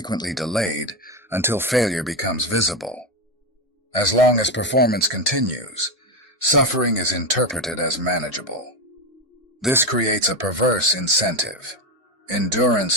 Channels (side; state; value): both; normal; correlation 0.13